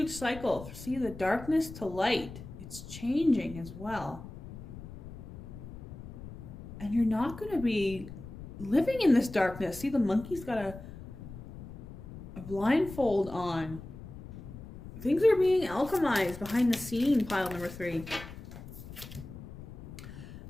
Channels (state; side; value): noise; left; rumble, 13 dB below the sound